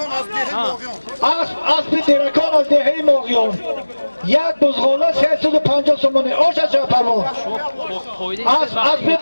از دهه ماغیون اسب درکان از دهه ماغیون یک بزغاله 350 سومانی آش از جای پهلوان اسب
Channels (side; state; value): both; inverted; correlation -1.00